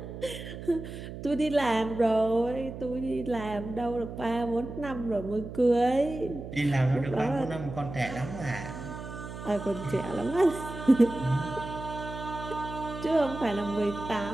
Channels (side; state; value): right; noise; hum, 10 dB below the sound